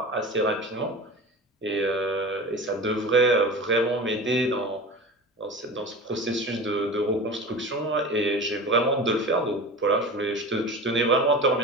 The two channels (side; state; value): both; normal; correlation 0.32